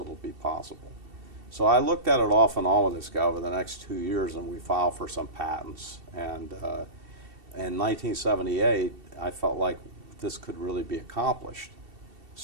be possible. So I looked at it off and on with this guy over the next 2 years, and we filed for some patents. And in 1978, I felt like this could really be accomplished.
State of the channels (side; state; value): left; late; 2.7 ms